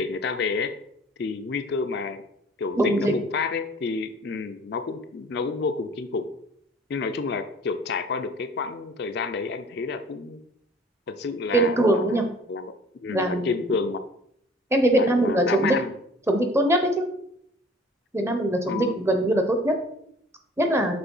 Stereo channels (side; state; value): both; normal; correlation 0.50